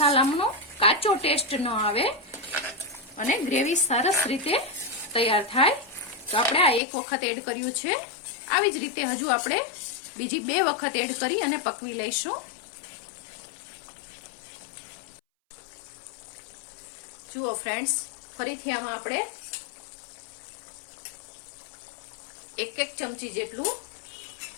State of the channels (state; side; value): drops out; right; at 6.8 s